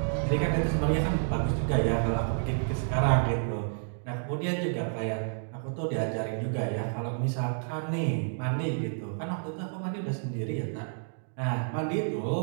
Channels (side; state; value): left; silent; digital silence